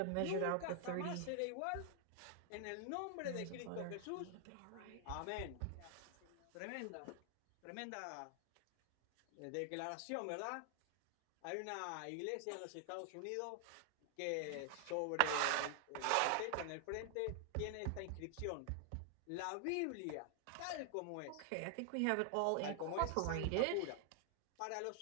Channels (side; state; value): both; different; correlation 0.00